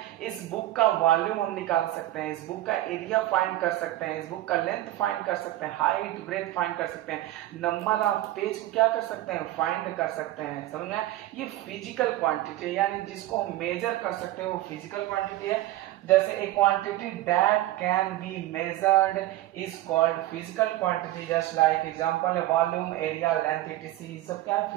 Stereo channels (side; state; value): left; quieter; 15.4 dB